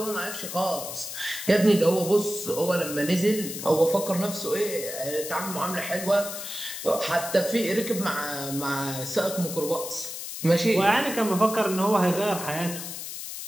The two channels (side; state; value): left; noise; hiss, 8 dB below the sound